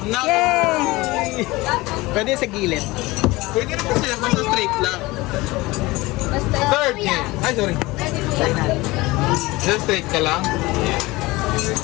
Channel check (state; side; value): quieter; right; 21.1 dB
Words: Naku. Yay! Pwede sa gilid. Pwede naman siya, basta straight lang. Third game. Ay, sorry. Try na. Just straight ka lang.